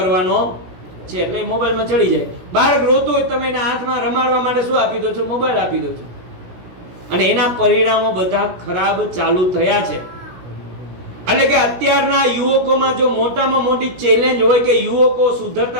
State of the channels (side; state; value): left; late; 17 ms